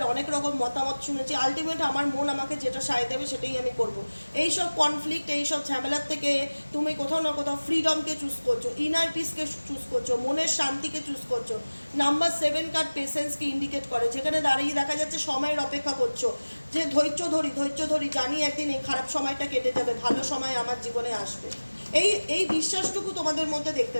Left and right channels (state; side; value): inverted; both; correlation -1.00